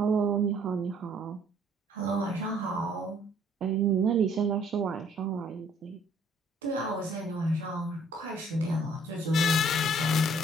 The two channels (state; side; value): normal; both; correlation 0.61